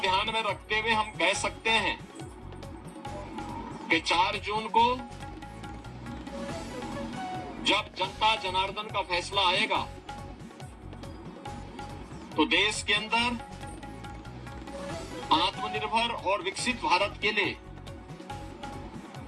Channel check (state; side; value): identical; both; correlation 1.00